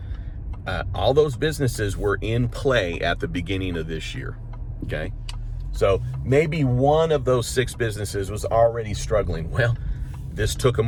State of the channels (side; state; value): both; identical; correlation 1.00